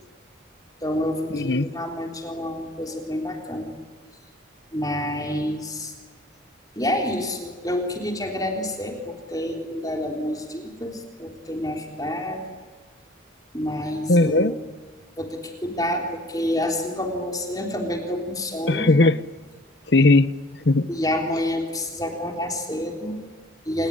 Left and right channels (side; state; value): both; normal; correlation 0.51